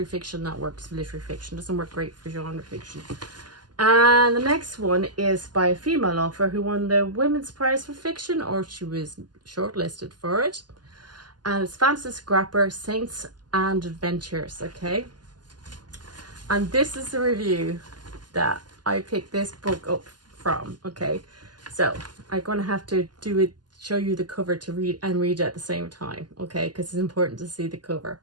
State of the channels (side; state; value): left; late; 0.70 ms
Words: fiction, that works for literary fiction. Doesn't work great for genre fiction. And the next one is by a female author who won the Women's Prize for Fiction, or she was shortlisted for it. And it's Frances Grapper, Saints and Adventures, okay? And this is the review that I picked this book up from, okay? So I'm going to have to show you the cover to read it at the same time, okay? Because it's important to see the cover.